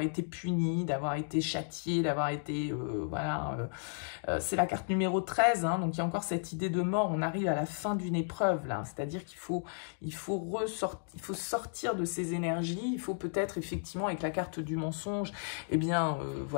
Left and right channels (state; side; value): silent; right; digital silence